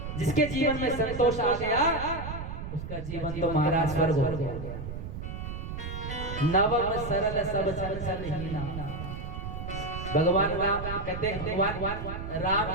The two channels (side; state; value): right; noise; rumble, 7 dB below the sound